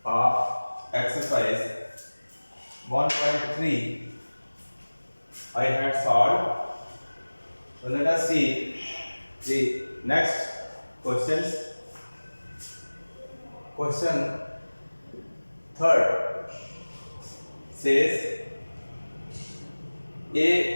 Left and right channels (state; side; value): inverted; both; correlation -1.00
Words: of exercise 1.3 I had solved. So let us see the next questions. Question third says